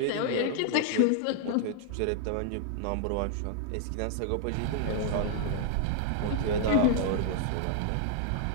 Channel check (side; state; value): both; different; correlation 0.00